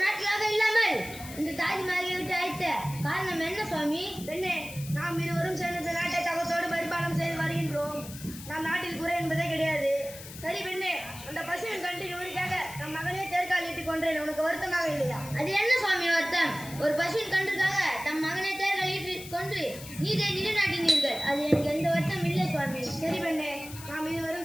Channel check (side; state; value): left; noise; hiss, 14 dB below the sound